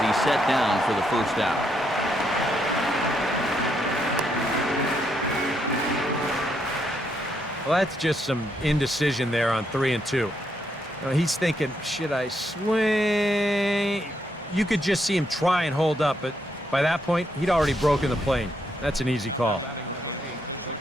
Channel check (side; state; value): both; normal; correlation 0.77